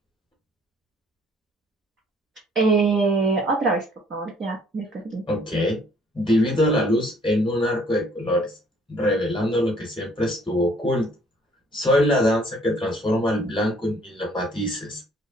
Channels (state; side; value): normal; both; correlation 0.60